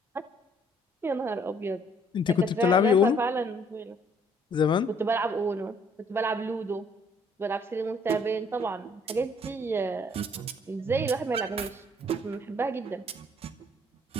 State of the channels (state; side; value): normal; both; correlation 0.62